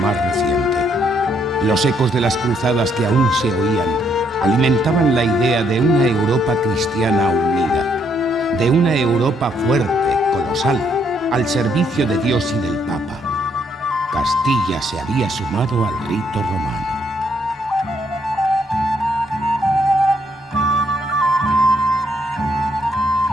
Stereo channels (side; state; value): both; normal; correlation 0.71